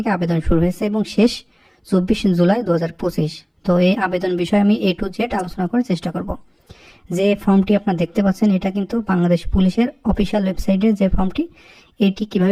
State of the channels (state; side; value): identical; both; correlation 1.00